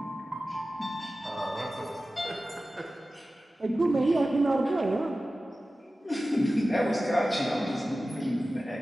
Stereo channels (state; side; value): normal; both; correlation 0.95